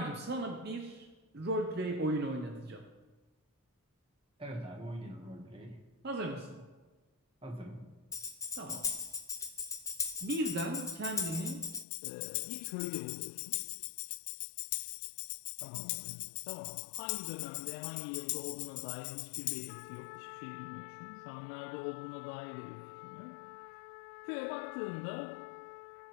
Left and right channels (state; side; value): drops out; right; at 11.9 s